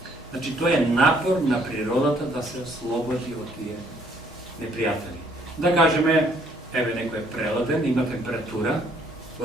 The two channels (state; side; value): normal; both; correlation 0.64